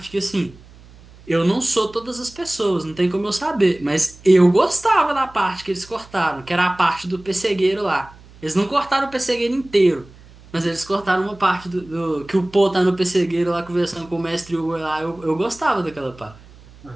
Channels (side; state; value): right; noise; hum, 23 dB below the sound